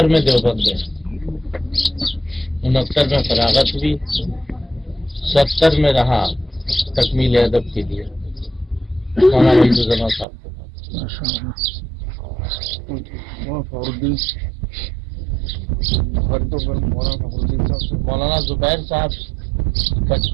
میں دیوبند گئے. 69 میں فراغت ہوئی. 70 میں رہا تکمیل ادب کے لیے مولانا وحید صاحب کے پاس. مولانا زبیر صاحب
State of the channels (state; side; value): drops out; left; at 10.2 s